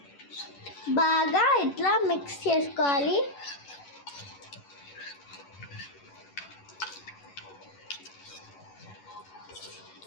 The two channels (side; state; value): right; late; 11 ms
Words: బాగా ఇట్లా మిక్స్ చేసుకోవాలి.